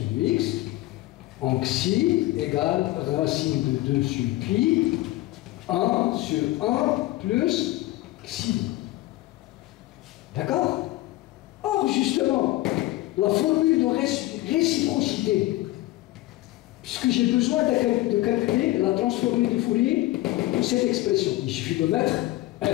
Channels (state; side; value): quieter; right; 17.7 dB